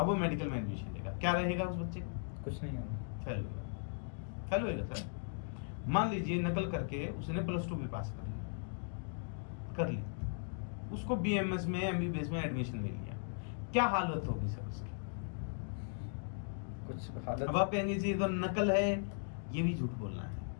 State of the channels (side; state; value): right; silent; digital silence